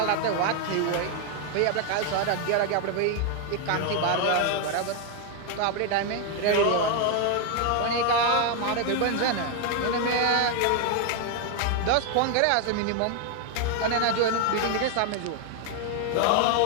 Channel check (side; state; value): both; different; correlation 0.01